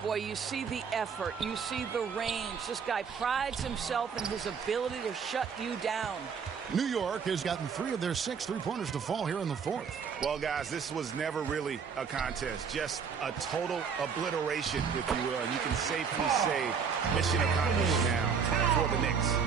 Boy, you see the effort. You see the range. This guy prides himself in his ability to shut you down. New York has gotten 3 of their 6 three-pointers to fall here in the fourth. Well, guys, this was never really a contest. Just a total obliteration, if you will. And you can safely say mission accomplished now for the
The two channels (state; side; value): quieter; left; 6.4 dB